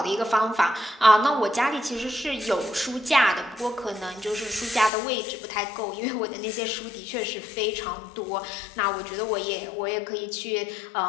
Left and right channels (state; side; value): drops out; right; at 4.9 s